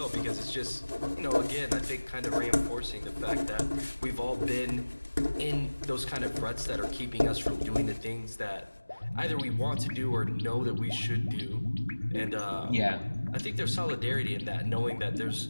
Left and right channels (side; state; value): both; inverted; correlation -1.00